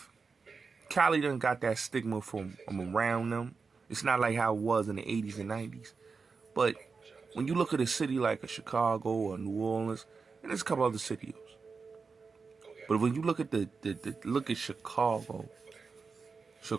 Cali done got that stigma from around them. It's not like how it was in the 80s and 90s. But when you look at a city like a Chicago or New Orleans, and there's a couple other cities, but when you look at look at Chicago,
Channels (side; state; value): left; quieter; 4.9 dB